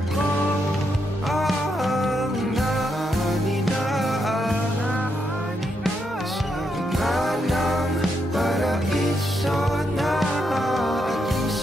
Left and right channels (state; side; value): normal; both; correlation 0.80